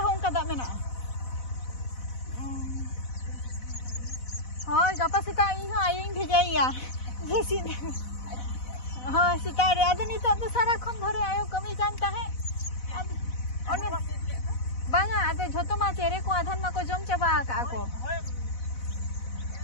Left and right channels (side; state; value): right; late; 4.0 ms